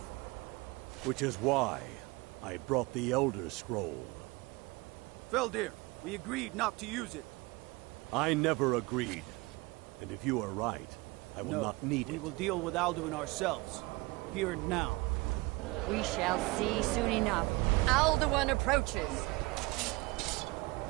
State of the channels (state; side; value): quieter; left; 23.6 dB